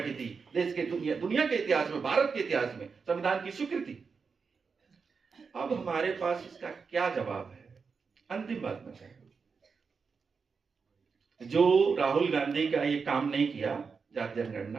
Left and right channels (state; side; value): quieter; left; 5.3 dB